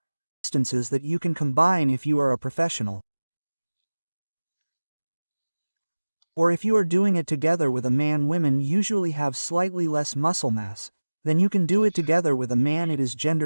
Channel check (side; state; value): both; inverted; correlation -1.00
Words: Distances that you can combine if you are a professional. Or if you are doing it together with a man. Women usually have slightly less muscle mass, then you can do it together with a man. It is